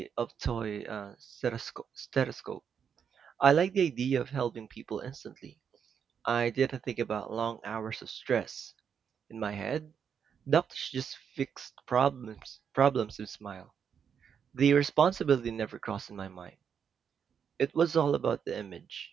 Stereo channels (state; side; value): quieter; left; 7.4 dB